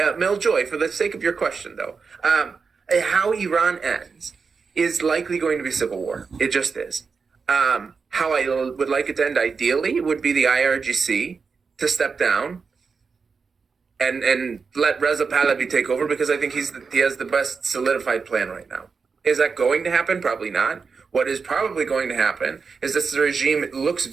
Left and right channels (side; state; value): left; quieter; 5.2 dB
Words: for the sake of your question, though, how Iran ends is likely going to be civil war. It just is. How I would like it to end ideally would be the IRGC to step down and let Reza Pahlavi take over, because I think he has the best solidified plan right now. Is that going to happen? Probably not. What is probably going to happen is this regime looks